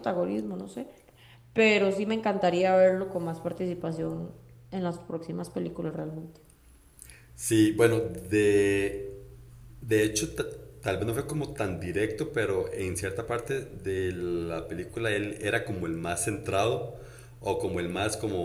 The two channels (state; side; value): identical; both; correlation 1.00